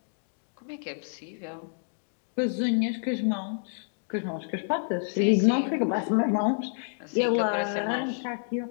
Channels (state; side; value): silent; right; digital silence